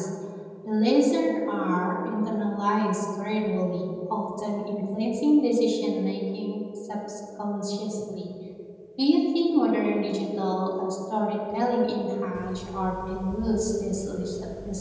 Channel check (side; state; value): both; identical; correlation 1.00